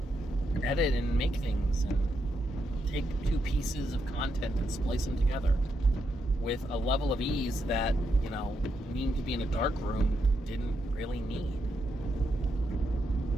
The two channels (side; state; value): both; normal; correlation 0.81